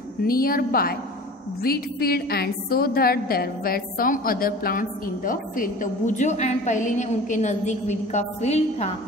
nearby wheat field and saw that there were some other plants in the field. तो बुजो एंड पहली ने उनके नजदीक वीट का फील्ड था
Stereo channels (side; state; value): both; normal; correlation 0.40